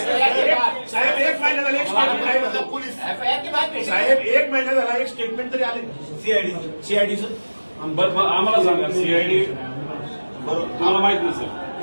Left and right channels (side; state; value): both; inverted; correlation -1.00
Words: साहेब एक महिना झाला एक स्टेटमेंट आहे मतलब पोलीस साहेब एक महिना झाला एक स्टेटमेंट तरी आले सीआयडीचं. बरं आम्हाला सांगा, सीआयडी तुम्हाला माहित नसेल,